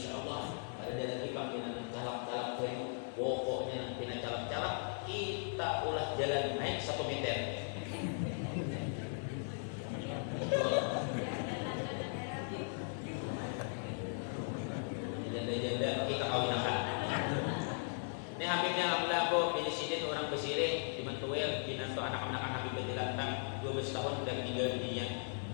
ada lagi panggilan calak-calak bayu pokoknya nanti calak-calak kita ulah jalan naik 1 meter. Janda-janda kita kawinakan. Ini Habibnya alhamdulillah aku pilih orang Besire di Mantuel binantu anak-anak Habib Bajilantang 12 tahun udah meninggal dunia.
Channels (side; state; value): right; silent; 52 dB below the other